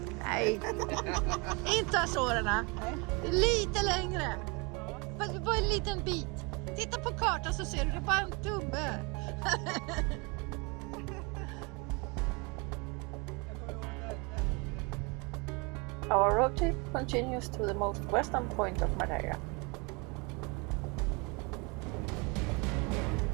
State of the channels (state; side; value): quieter; left; 29.5 dB